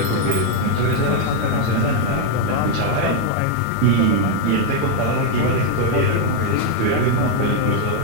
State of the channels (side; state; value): both; different; correlation 0.00